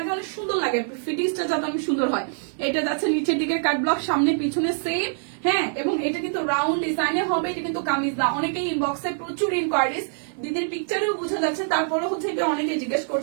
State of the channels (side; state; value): left; silent; 56 dB below the other